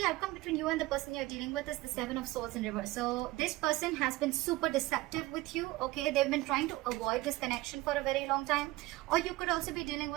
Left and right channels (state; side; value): quieter; left; 19.2 dB